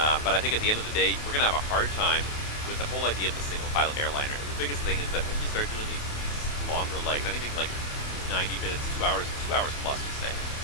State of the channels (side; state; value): right; late; 28 ms